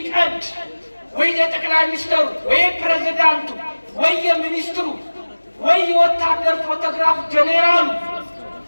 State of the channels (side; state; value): both; inverted; correlation -1.00